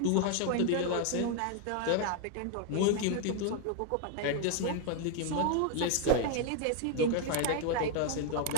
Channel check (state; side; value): different; both; correlation 0.01